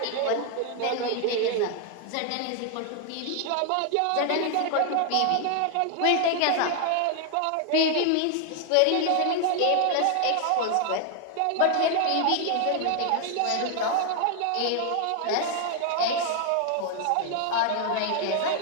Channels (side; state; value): both; different; correlation 0.00